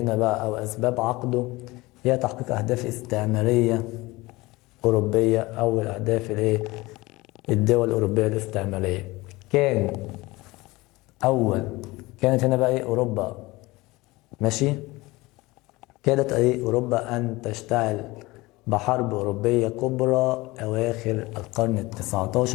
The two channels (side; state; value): right; quieter; 21.4 dB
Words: بقى أو أسباب عقده هي تحقيق أهداف استعمارية أوروبية أو الأهداف الإيه؟ الدول الأوروبية الاستعمارية. كانت هنا بقى إيه؟ أوروبا ماشي؟ كادت إيه؟ أوروبا أن تشتعل بحرب أوروبية كبرى أواخر القرن